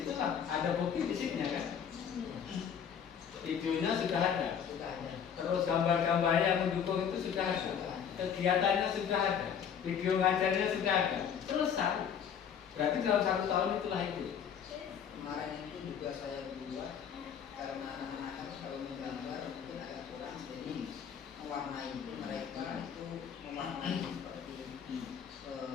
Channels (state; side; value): quieter; right; 7.9 dB